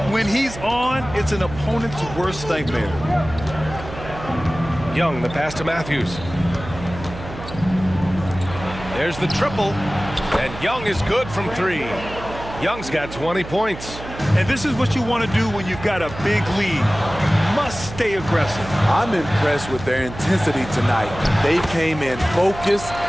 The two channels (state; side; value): noise; right; hum, 12 dB below the sound